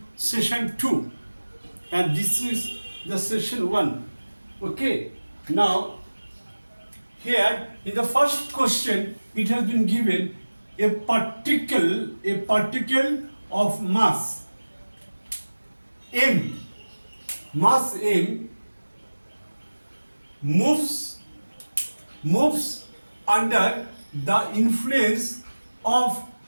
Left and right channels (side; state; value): both; inverted; correlation -1.00